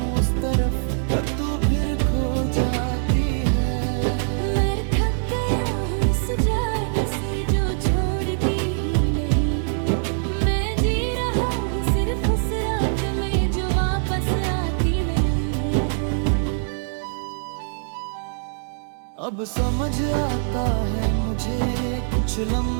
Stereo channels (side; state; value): left; silent; digital silence